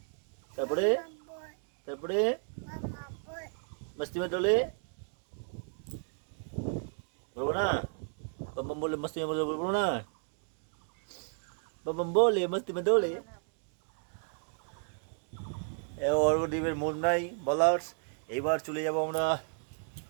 তারপরে তারপরে মস্তি মে টোলে বলবো না, বাম বাম বলে মস্তি মে বলবো না, বাম বাম বলে মস্তি মে দোলে। অর্ঘ্যদীপের মন নাই বলার। এইবার চলে যাব আমরা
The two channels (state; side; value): silent; left; 55 dB below the other